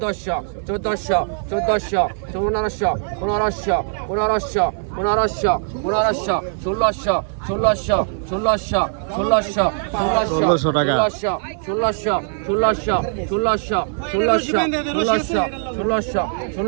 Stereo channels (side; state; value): left; silent; 59 dB below the other